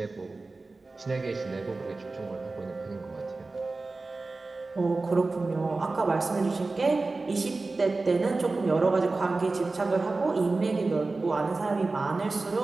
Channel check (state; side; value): quieter; left; 3.5 dB